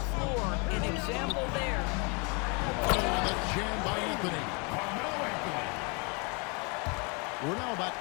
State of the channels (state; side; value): quieter; right; 32.0 dB